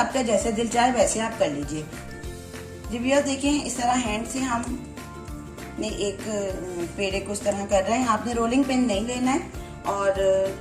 जैसे दिल चाहे वैसे आप कर लीजिए। जी व्यूअर्स देखिए, इस तरह हैंड से हम ने एक पेड़े को इस तरह कर रहे हैं। आपने रोलिंग पिन नहीं लेना है। और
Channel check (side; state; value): both; identical; correlation 1.00